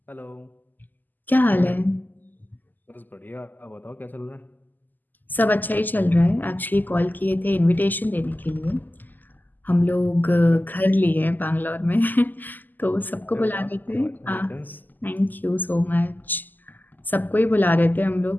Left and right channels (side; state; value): right; late; 0.086 ms